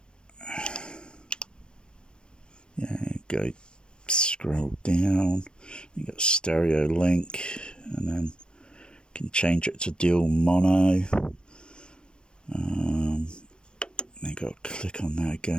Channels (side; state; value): right; late; 0.053 ms